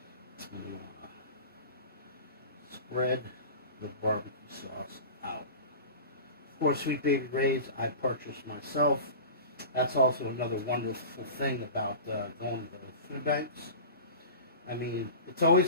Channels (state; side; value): inverted; both; correlation -0.34